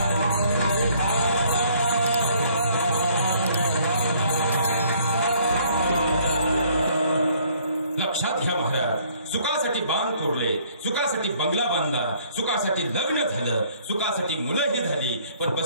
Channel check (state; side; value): inverted; both; correlation -0.61